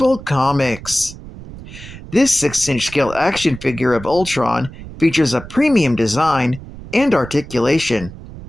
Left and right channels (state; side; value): noise; right; rumble, 14 dB below the sound